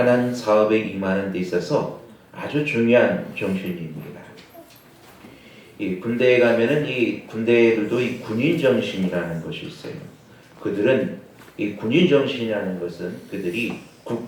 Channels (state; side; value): identical; both; correlation 1.00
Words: 사업에 임하는 데 있어서 아주 중요한 정신입니다. 이 군대에 가면은 이 군대들도 이 군인 정신이라는 것이 있어요. 그들은 이 군인 정신이라는 것은 그들이